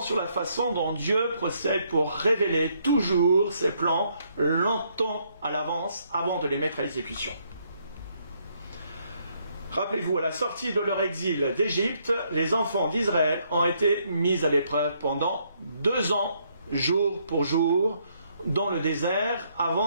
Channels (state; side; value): inverted; both; correlation -0.71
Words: sur la façon dont Dieu procède pour révéler toujours ses plans longtemps à l'avance avant de les mettre à exécution. Rappelez-vous, à la sortie de leur exil d'Égypte, les enfants d'Israël ont été mis à l'épreuve pendant 2 ans, jour pour jour, dans le désert,